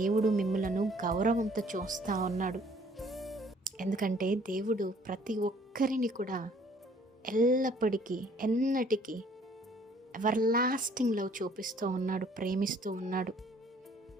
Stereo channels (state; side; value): normal; both; correlation 0.59